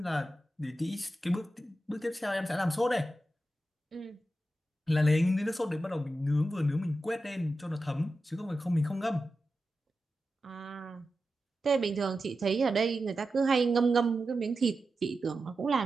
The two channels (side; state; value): both; normal; correlation 0.91